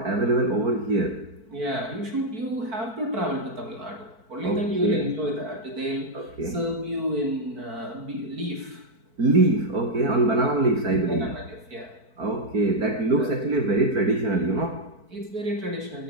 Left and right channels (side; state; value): left; late; 4.5 ms